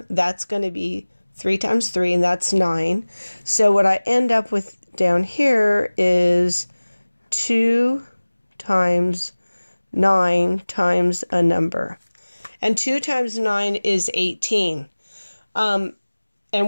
that's going to be 3 times 3, and that's 9. So what I end up with down here is 2 times 9 times a number. And 2 times 9 is 18.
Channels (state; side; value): inverted; both; correlation -1.00